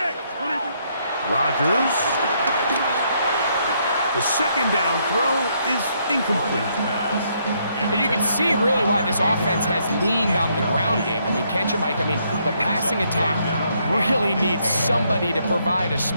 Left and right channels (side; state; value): both; inverted; correlation -0.73